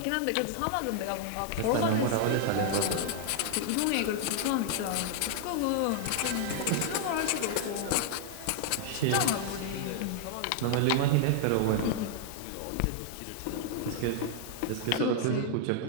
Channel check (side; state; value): both; different; correlation 0.00